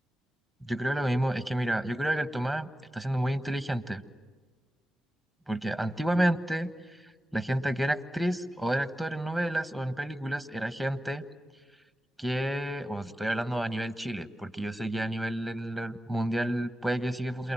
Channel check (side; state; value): both; normal; correlation 0.94